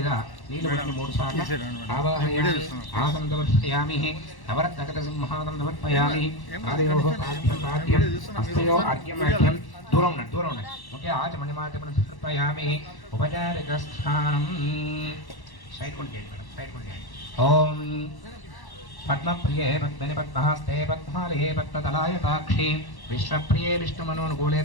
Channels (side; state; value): right; late; 1.1 ms